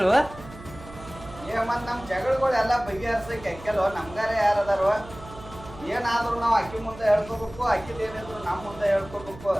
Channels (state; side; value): noise; right; hum, 17 dB below the sound